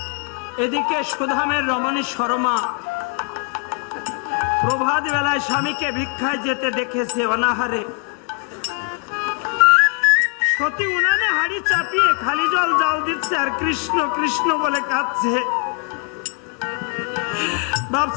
এদিকে সুধামের রমণী শর্মা প্রভাত বেলায় স্বামীকে ভিক্ষায় যেতে দেখেছে অনাহারে। সতী উনানে হাড়ি চাপিয়ে খালি জল জাল দিচ্ছে আর কৃষ্ণ কৃষ্ণ বলে কাঁদছে।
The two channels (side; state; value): right; quieter; 34.1 dB